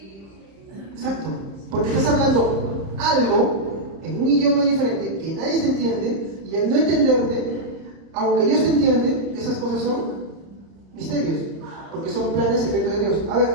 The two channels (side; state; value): left; late; 30 ms